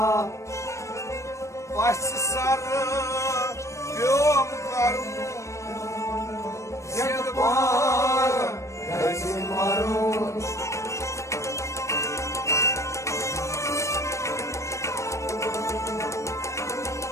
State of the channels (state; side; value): late; right; 0.15 ms